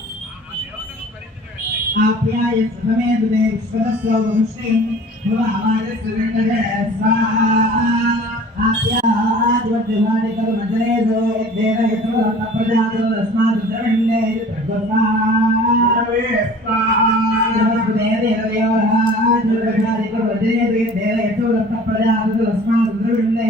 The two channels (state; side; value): normal; both; correlation 0.46